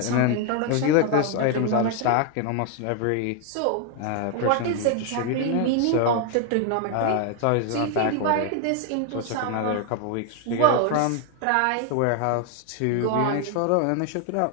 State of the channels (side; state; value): both; different; correlation 0.01